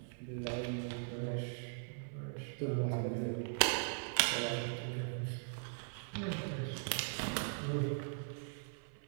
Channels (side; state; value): left; silent; 51 dB below the other